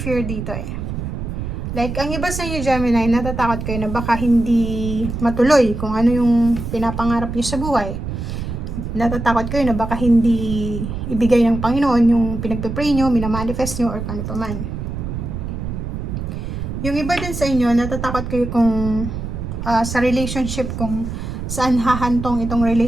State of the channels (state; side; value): noise; right; rumble, 5 dB below the sound